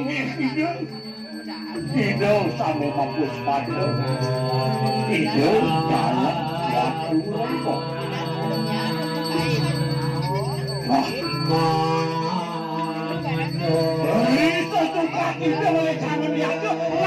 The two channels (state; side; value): identical; both; correlation 1.00